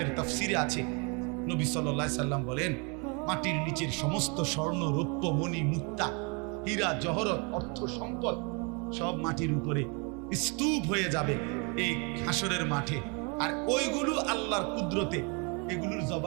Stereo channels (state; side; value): quieter; left; 33.2 dB